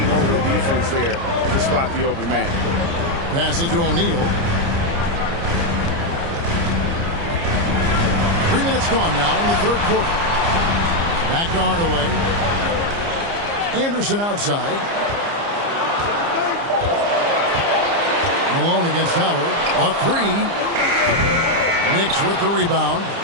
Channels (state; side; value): late; left; 29 ms